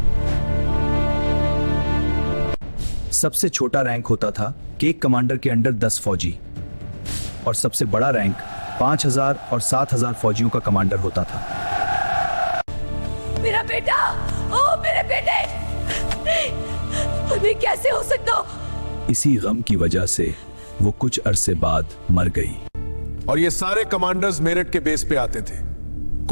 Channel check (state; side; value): inverted; both; correlation -1.00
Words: सबसे छोटा रैंक होता था कि एक कमांडर के अंडर 10 फौजी और सबसे बड़ा रैंक 5000 और 7000 फौजियों का कमांडर होता था। मेरा बेटा, ओ मेरे बेटे, अभी कैसे हो सकता? इसी गम की वजह से वो कुछ अरसे बाद मर गई। और ये सारे कमांडर्स मेरठ के बेस पे आते थे।